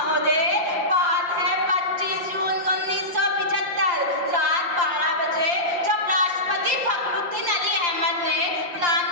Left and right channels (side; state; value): left; late; 5.7 ms